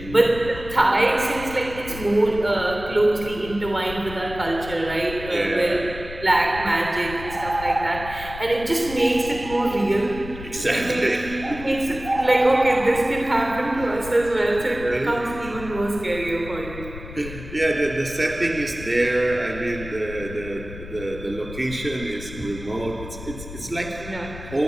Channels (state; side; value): noise; left; rumble, 12 dB below the sound